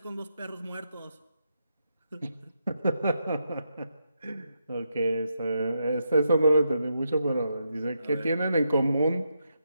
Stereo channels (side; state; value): both; inverted; correlation -0.82